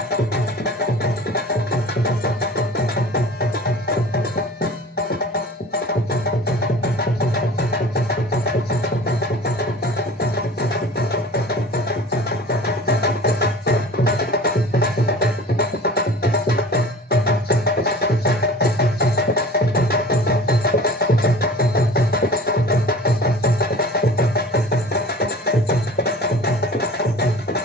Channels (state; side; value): normal; both; correlation 0.42